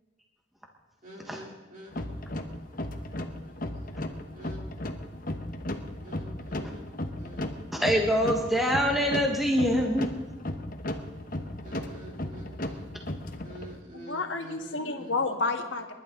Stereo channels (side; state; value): both; normal; correlation 0.54